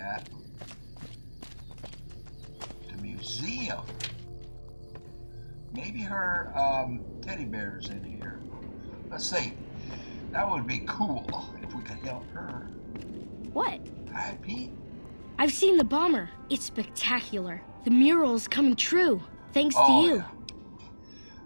The museum. Maybe her teddy bear's in here. Let's see. That would be cool if we could help her. What? Hi, Pete. I've seen the bomber. It's spectacular. The mural's coming true. Thanks to you.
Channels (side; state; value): both; inverted; correlation -1.00